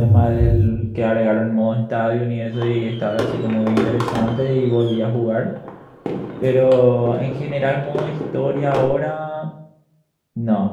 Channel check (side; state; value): both; identical; correlation 1.00